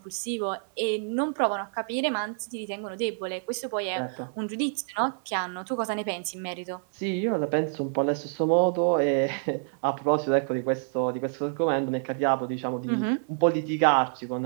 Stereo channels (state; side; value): silent; left; digital silence